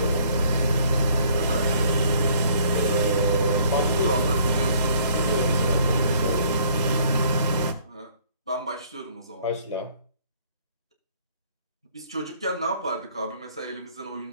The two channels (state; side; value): inverted; both; correlation -0.60